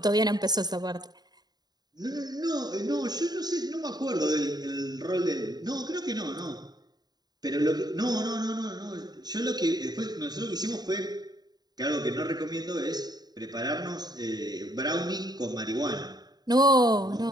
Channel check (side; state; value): left; late; 0.20 ms